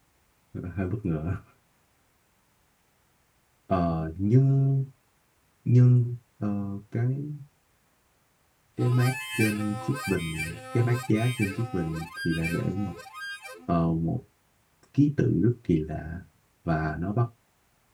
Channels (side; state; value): both; identical; correlation 1.00